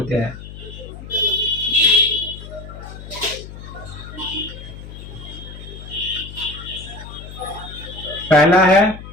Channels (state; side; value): noise; left; hum, 13 dB below the sound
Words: हैं। पहला है